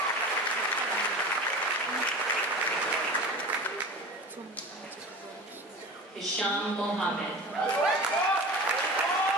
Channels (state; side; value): normal; both; correlation 0.34